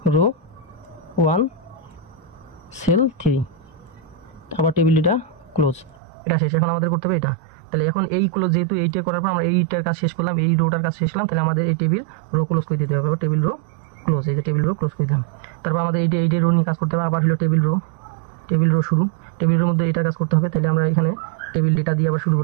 রো 1 সেল 3, আবার টেবিল ডেটা ক্লোজ, এটা শেষ। এখন আমাদের করতে হবে এটা। তাহলে এখন এই ক্লোজ, যেহেতু এইটা করার পর আমরা এইটার কাজ শেষ করলাম, এই রোটার কাজ শেষ করলাম, তাহলে আমাদের এই টেবিল রো ক্লোজ করে দিতে হবে, আবার টেবিল রো ক্লোজ, এই যে টেবিল রো ক্লোজ করে দিলাম। তারপর আমাদের এইটা রো নিয়ে কাজ করতে হবে, আবার হলো টেবিল রো শুরু, টেবিল রোর মধ্যে এটার কাজ করতে হবে। তাহলে আমরা এখানে টেবিল ডেটা দিয়ে আবার শুরু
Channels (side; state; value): left; drops out; at 6.0 s